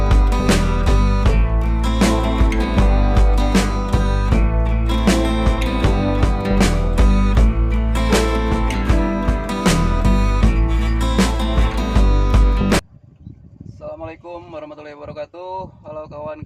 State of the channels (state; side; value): identical; both; correlation 1.00